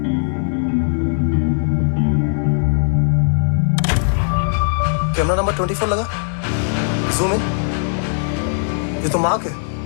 Camera number 24 लगा, जूम इन। ये तो मार्क है।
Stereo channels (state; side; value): silent; right; digital silence